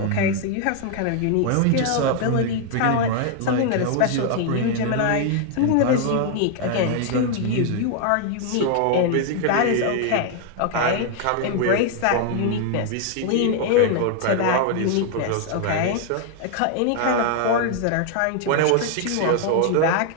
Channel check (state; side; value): different; both; correlation 0.00